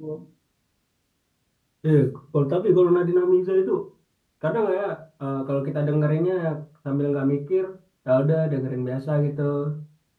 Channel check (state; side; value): identical; both; correlation 1.00